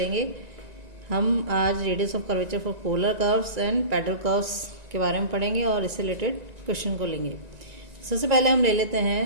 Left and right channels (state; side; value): late; left; 1.9 ms